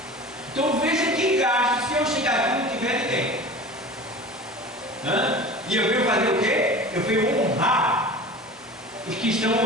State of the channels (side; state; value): both; normal; correlation 0.36